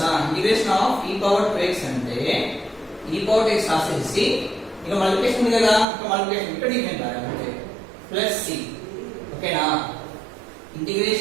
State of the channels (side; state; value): left; drops out; at 5.9 s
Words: Integration of e power 2x అంటే e power 2x రాసేసి ఇక మల్టిప్లికేషన్ ఉంది కదా, ఇక మల్టిప్లికేషన్ ఇక్కడ డిఫరెంట్ రాయాలి అంటే ప్లస్ c. ఓకేనా?